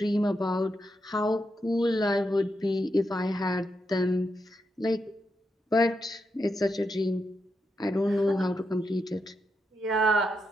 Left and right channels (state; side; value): normal; both; correlation 0.84